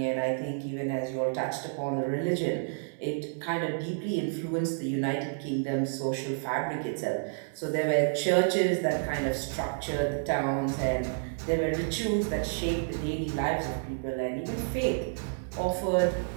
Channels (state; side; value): silent; left; 58 dB below the other